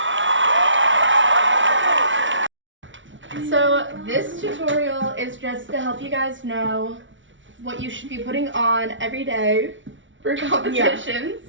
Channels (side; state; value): left; late; 0.56 ms